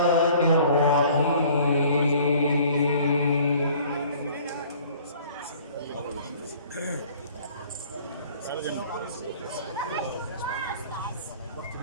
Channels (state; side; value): inverted; both; correlation -0.52